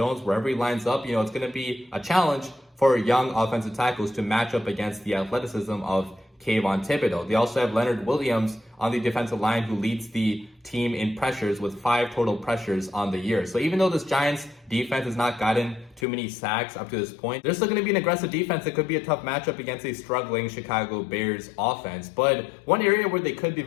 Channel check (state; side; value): drops out; right; at 16.1 s